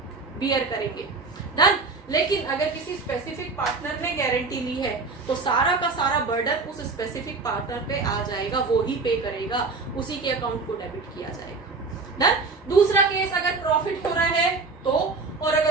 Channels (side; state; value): left; quieter; 4.1 dB